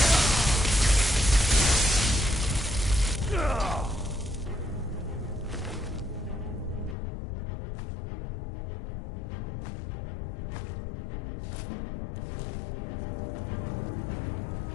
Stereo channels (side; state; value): right; drops out; at 7.0 s